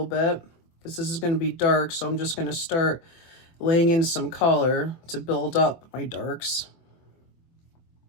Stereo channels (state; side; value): late; right; 24 ms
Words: bit because this is gonna be dark. So I'm just gonna start laying in some color to build up my darks.